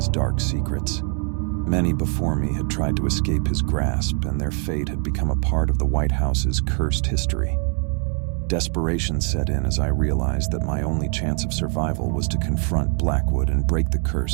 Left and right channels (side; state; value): left; quieter; 38.2 dB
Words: dark secrets. Many before me had tried to escape his grasp, and their fate had become a part of the White House's cursed history. Desperation set in as I realized that my only chance of survival was to confront Blackwood and break the